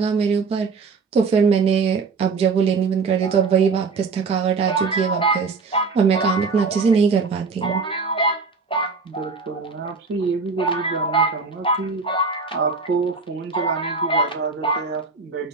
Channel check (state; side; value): quieter; left; 4.6 dB